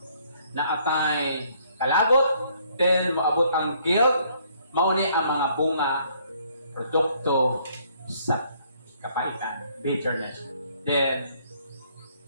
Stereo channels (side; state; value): both; inverted; correlation -0.65